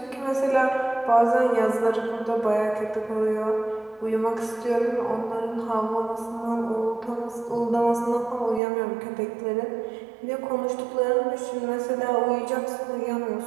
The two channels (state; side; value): drops out; left; at 8.6 s